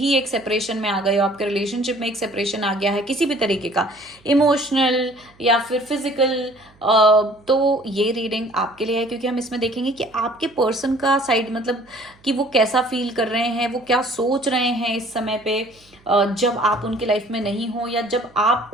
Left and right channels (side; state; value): right; noise; hum, 30 dB below the sound